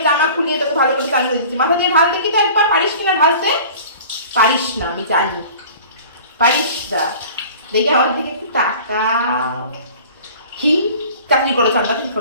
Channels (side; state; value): both; inverted; correlation -0.43